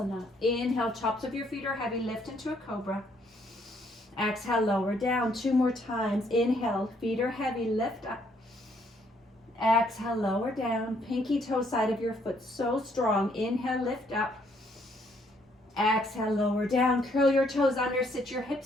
Inhale, tops of your feet are heavy. Lift into a cobra. Exhale, lower down. Two more times. Inhale, feet are heavy. Lift up. Exhale, lower down. Pinky toe side of your foot so strong. Inhale, lift up. Exhale, lower down. Curl your toes under. Sit your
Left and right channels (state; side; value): normal; both; correlation 0.69